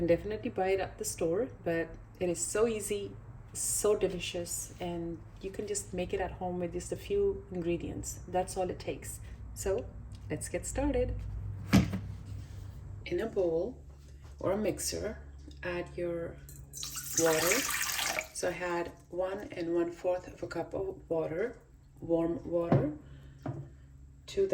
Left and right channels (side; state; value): both; identical; correlation 1.00